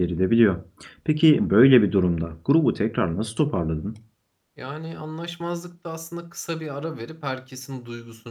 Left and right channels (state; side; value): identical; both; correlation 1.00